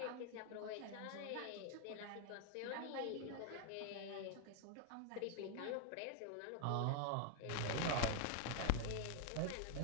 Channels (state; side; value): different; both; correlation 0.00